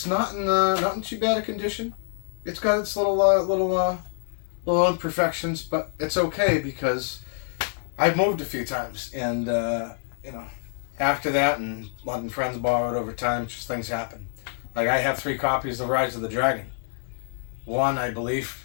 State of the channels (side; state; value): right; silent; 61 dB below the other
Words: not in too bad a condition. It's got its little imperfections, but it's okay because I've moved a few times, and after that, and letting friends borrow it over time, just things happen. Like, I have 3 copies of Rise of the Dragon. One, I believe,